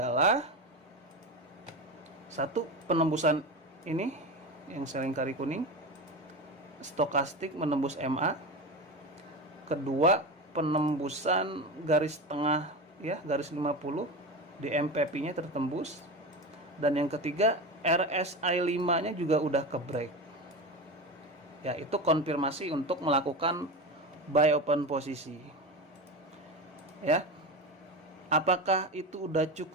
satu, penembusan ini yang selingkari kuning, stokastik menembus MA. Kedua, penembusan garis tengah ya, garis 50 di MPP-nya tertembus. Dan yang ketiga, RSI 5-nya juga udah ke break. Ya, itu konfirmasi untuk melakukan buy open posisi. Ya. Apakah itu udah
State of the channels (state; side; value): normal; both; correlation 0.23